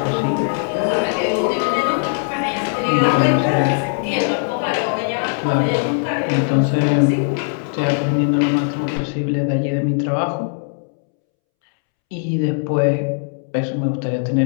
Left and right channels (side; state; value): right; silent; 66 dB below the other